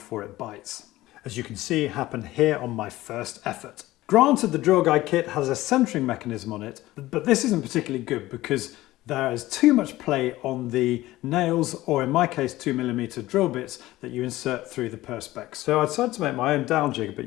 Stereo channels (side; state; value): right; quieter; 16.9 dB